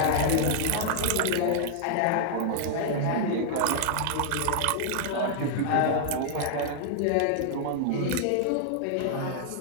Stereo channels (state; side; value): different; both; correlation -0.01